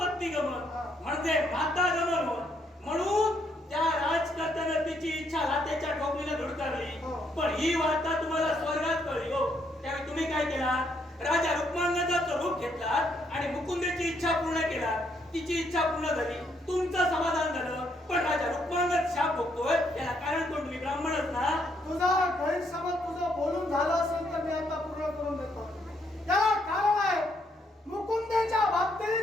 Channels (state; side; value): normal; both; correlation 0.73